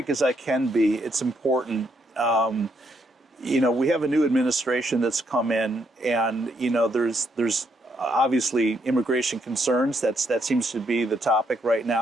as I can be. It's important. You know, we have a new administration that's come in, and you know, there's obviously immigration concerns. That seems to be the topic right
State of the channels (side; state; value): both; normal; correlation 0.75